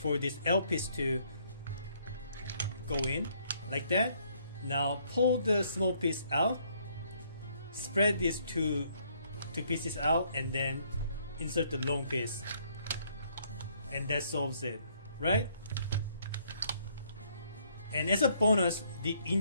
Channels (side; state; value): both; inverted; correlation -0.67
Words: this L piece to go in like that. Now pull the small piece out, spread these two pieces out, and then insert the long piece, and that solves it, right? And as a bonus, the